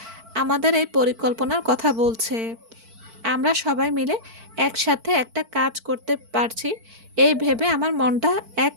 আমাদের এই পরিকল্পনার কথা বলছে। আমরা সবাই মিলে একসাথে একটা কাজ করতে পারছি এই ভেবে আমার মনটা এক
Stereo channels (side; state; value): left; late; 4.5 ms